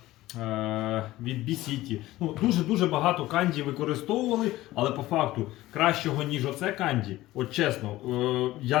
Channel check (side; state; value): right; quieter; 16.7 dB